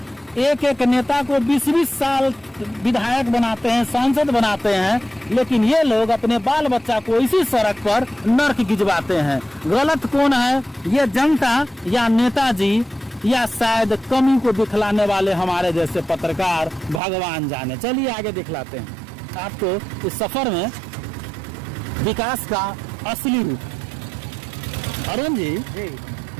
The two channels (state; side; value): drops out; left; at 17.0 s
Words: एक एक नेता को 20-20 साल विधायक बनाते हैं, सांसद बनाते हैं, लेकिन ये लोग अपने बाल बच्चा को इसी सड़क पर नर्क गिजवाते हैं। गलत कौन है, ये जनता या नेताजी या शायद कमी को दिखलाने वाले हमारे जैसे पत्रकार, भगवान जाने। चलिए आगे दिखलाते हैं आपको इस सफर में विकास का असली रूप। अरुण जी,